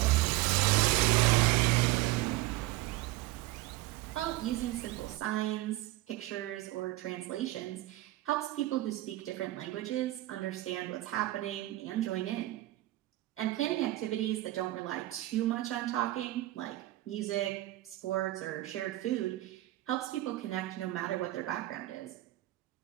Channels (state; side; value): quieter; left; 17.5 dB